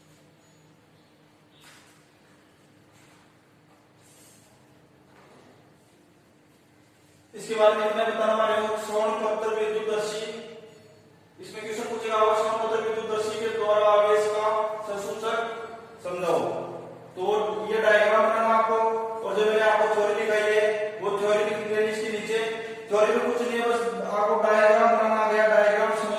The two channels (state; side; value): identical; both; correlation 1.00